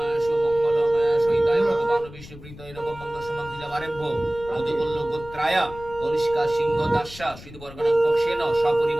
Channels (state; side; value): noise; left; rumble, 17 dB below the sound